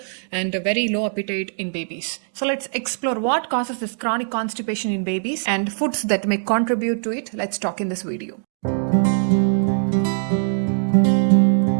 and a very low appetite in babies. So let's explore what causes this chronic constipation in babies and foods that may contribute to it. Let's talk in this video.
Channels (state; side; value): silent; left; digital silence